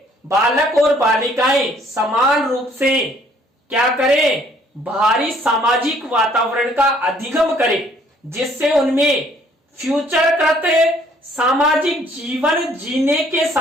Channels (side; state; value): both; normal; correlation 0.61